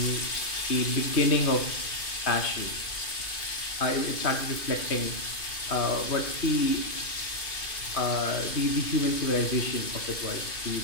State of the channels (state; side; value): late; right; 2.5 ms